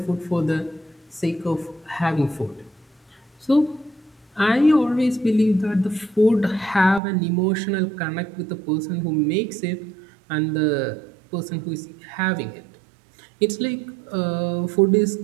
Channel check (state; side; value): drops out; left; at 7.0 s